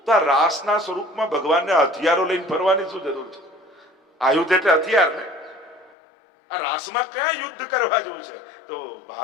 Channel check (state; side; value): drops out; right; at 6.0 s